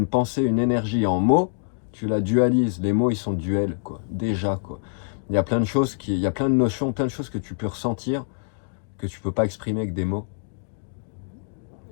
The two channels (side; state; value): right; silent; digital silence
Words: pensée, une énergie en mots, tu la dualises. Les mots, ils sont duels, quoi. Déjà, quoi. Il y a plein de choses, il y a plein de notions, plein de choses que tu peux ressentir, que tu peux pas exprimer avec des mots.